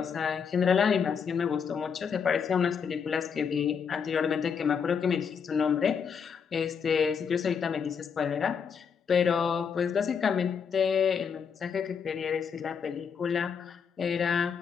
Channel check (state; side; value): quieter; right; 6.6 dB